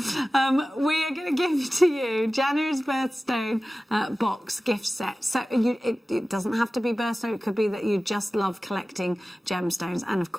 are going to give to you January's birthstone box gift set. So it doesn't have to be birthstone. It could be that you just love collecting gemstones. And, of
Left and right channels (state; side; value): normal; both; correlation 0.96